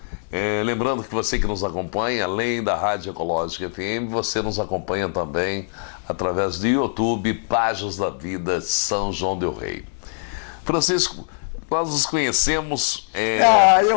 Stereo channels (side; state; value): right; silent; digital silence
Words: Lembrando que você que nos acompanha, além da Rádio Ecológica FM, você nos acompanha também através do YouTube, Páginas da Vida São João del Rei. Francisco, nós nos conhecemos...